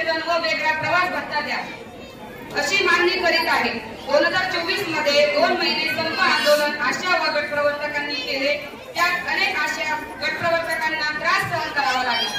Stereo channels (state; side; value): identical; both; correlation 1.00